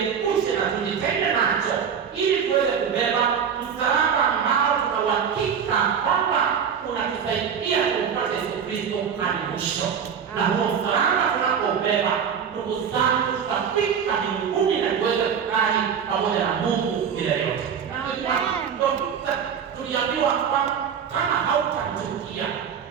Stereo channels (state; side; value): quieter; left; 7.4 dB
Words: na tujitenge nacho, ili tuweze kubeba msalaba ambao tuna uhakika kwamba unatusaidia kumpata Yesu Kristo hadi mwisho. Na huo msalaba tunapobeba, ndugu zangu, tutafika mbinguni na tuweze kukaa pamoja na Mungu milele yote. Tuliambiwa kwamba kama hautamchukia